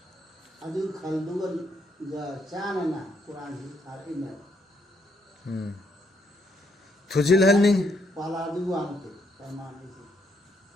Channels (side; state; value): both; normal; correlation 0.74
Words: ꯑꯗꯨ ꯈꯜꯗꯨꯒ ꯆꯥꯅꯅ ꯀꯨꯔꯥꯟꯁꯤ ꯊꯥꯔꯛꯏꯅꯦꯕ ꯊꯨꯖꯤꯜꯍꯟꯅꯤꯡ ꯄꯥꯂꯥꯗꯨ ꯋꯥꯡꯇꯦ ꯄꯔꯃꯥꯟꯅꯤꯁꯤ